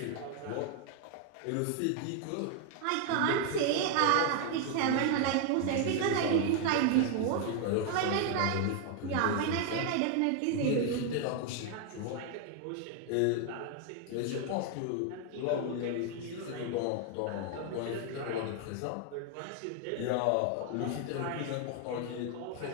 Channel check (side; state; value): both; different; correlation 0.00